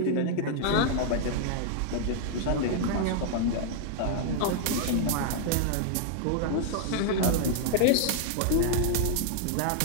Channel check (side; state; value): both; different; correlation 0.00